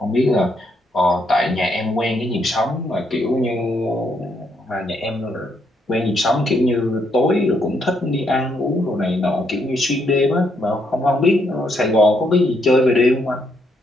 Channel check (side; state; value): both; normal; correlation 0.75